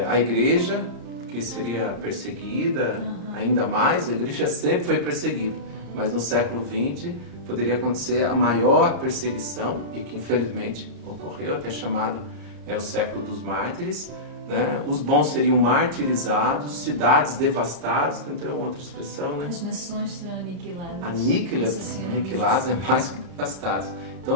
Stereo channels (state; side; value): late; left; 34 ms